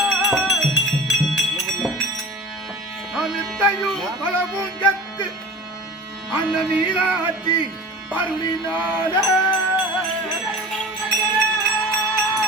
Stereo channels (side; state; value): both; normal; correlation 0.37